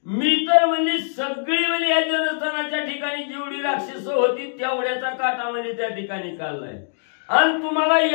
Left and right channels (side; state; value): right; silent; digital silence